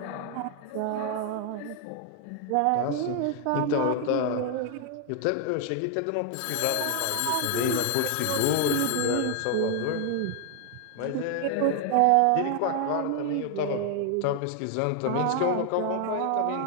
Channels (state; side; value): different; both; correlation 0.00